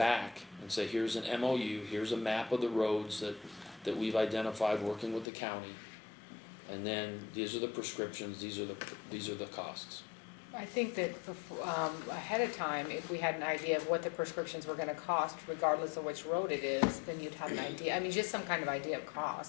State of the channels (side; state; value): right; drops out; at 5.2 s